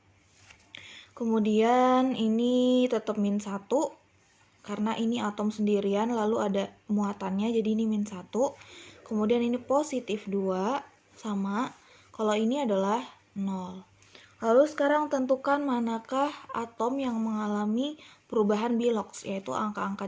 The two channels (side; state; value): both; identical; correlation 1.00